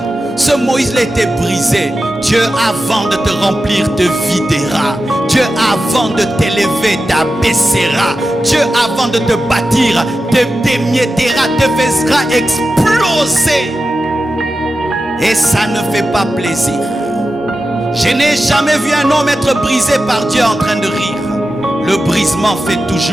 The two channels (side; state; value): both; normal; correlation 0.92